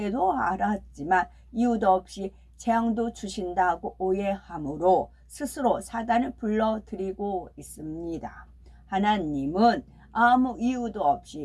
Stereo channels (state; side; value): identical; both; correlation 1.00